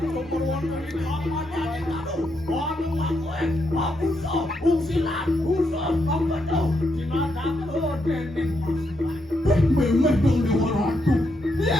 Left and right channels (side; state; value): both; normal; correlation 0.80